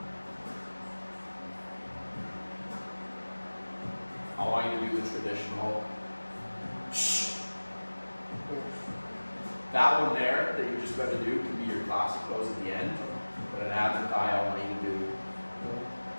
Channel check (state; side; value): inverted; both; correlation -1.00